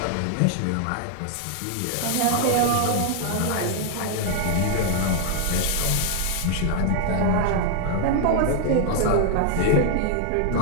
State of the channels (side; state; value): both; different; correlation 0.00